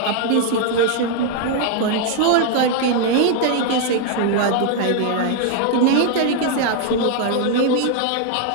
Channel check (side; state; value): both; different; correlation 0.00